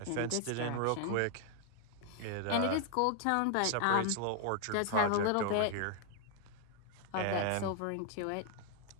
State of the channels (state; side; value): different; both; correlation 0.00